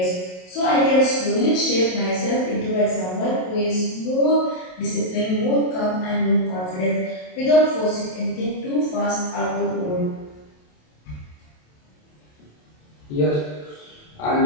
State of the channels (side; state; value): right; late; 27 ms